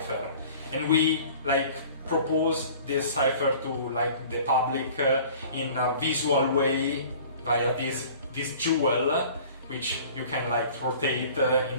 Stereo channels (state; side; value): inverted; both; correlation -0.47